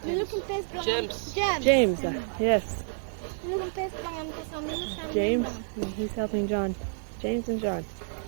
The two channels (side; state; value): left; silent; digital silence